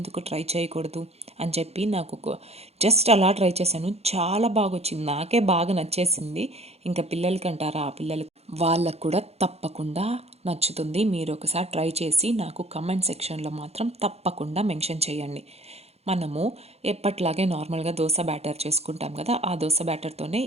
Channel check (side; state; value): left; late; 0.30 ms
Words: ట్రై చేయకూడదు అని చెప్పి నాకు జస్ట్ అలా ట్రై చేశాను. చాలా బాగా వచ్చింది, నాకే బాగా నచ్చేసింది. ఇంకా పిల్లలకి అంటారా, ఆ పిల్లలకి వాళ్ళకు కూడా తప్పకుండా నచ్చుతుంది. మీరు ఒకసారి ట్రై చేసి నాకు కమెంట్ సెక్షన్లో మాత్రం తప్పకుండా మెన్షన్ చేయండి. మనము ఎప్పట్లాగే నార్మల్గా దోశ బ్యాటర్ చేసుకుంటాం కదా, ఆ దోశ బ్యాటర్తోనే